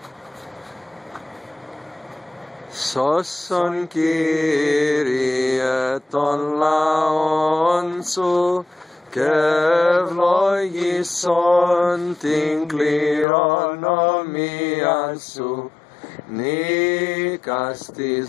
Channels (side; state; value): right; drops out; at 13.2 s